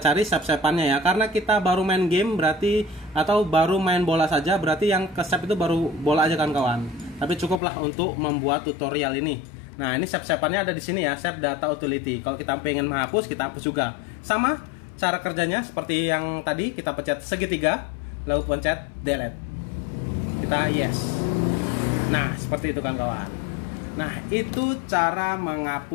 save-save-annya ya. Karena kita baru main game berarti, atau baru main bola saja, berarti yang ke save itu baru bola aja kan kawan. Tapi cukuplah untuk membuat tutorial ini. Nah, ini save-save-annya ada di sini ya, save data utility. Kalau kita pengen menghapus, kita hapus juga. Sama cara kerjanya seperti yang tadi, kita pencet segitiga, lalu pencet delete. Kita yes. Nah, seperti itu kan kawan. Nah, itu cara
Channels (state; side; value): drops out; right; at 7.6 s